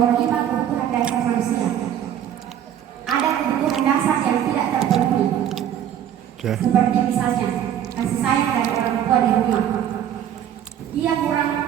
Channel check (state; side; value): quieter; left; 10.2 dB